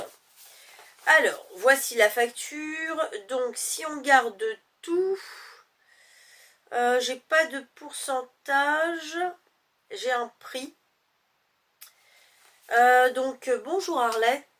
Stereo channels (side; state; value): both; identical; correlation 1.00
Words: Alors, voici la facture. Donc si on garde tout, j'ai pas de pourcentage, j'ai un prix. Donc bonjour